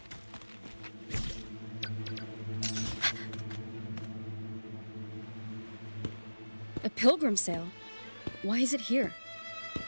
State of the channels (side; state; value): both; inverted; correlation -1.00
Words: A pilgrim sale? Why is it here?